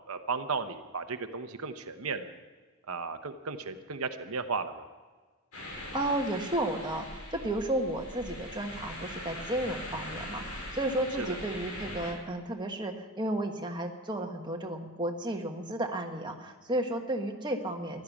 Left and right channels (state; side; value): normal; both; correlation 0.23